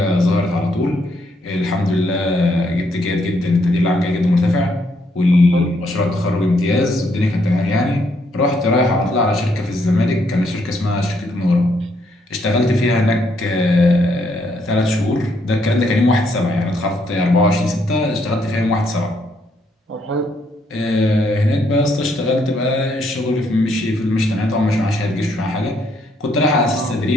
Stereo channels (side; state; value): both; normal; correlation 0.73